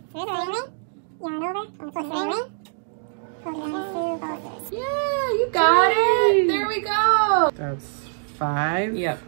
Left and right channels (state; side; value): silent; left; digital silence